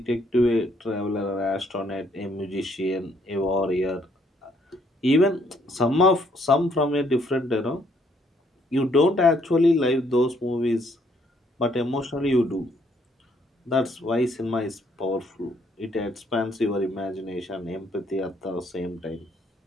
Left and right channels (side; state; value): both; normal; correlation 0.68